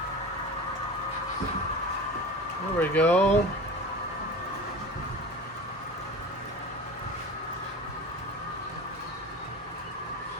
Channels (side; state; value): both; normal; correlation 0.34